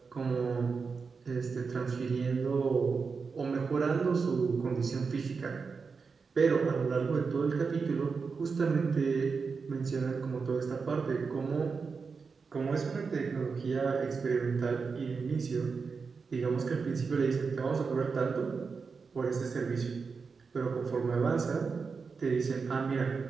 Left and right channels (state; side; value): quieter; left; 5.1 dB